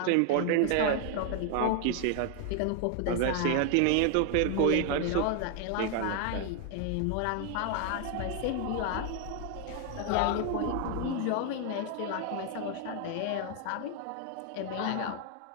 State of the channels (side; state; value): both; different; correlation 0.00